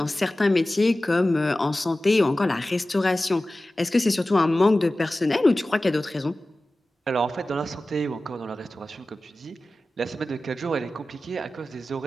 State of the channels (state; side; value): normal; both; correlation 0.96